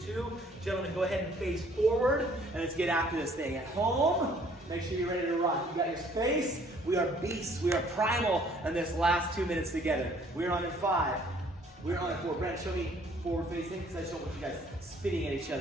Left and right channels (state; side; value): normal; both; correlation 0.59